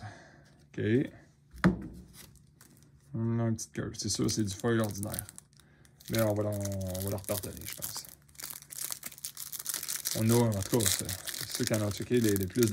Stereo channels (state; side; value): identical; both; correlation 1.00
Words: OK. On a une petite curve. C'est sûr, c'est du foil ordinaire. Mais on va leur pardonner, je pense. On a, en tout cas, ceux qui en ont checké les plus